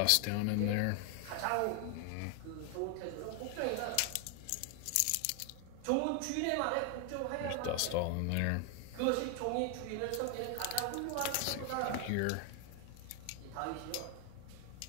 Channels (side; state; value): both; different; correlation 0.00